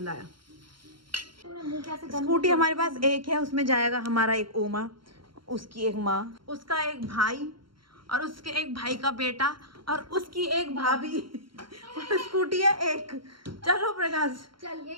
आया। स्कूटी हमारे पास एक है, उसमें जाएगा हमारा एक ओमा, उसकी एक माँ, उसका एक भाई, और उसके एक भाई का बेटा, और उसकी एक भाभी। और स्कूटी है एक। चलो प्रकाश, चल यही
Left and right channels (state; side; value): late; left; 0.73 ms